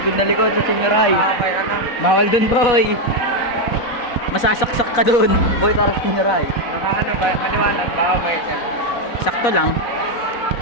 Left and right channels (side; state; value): right; late; 4.1 ms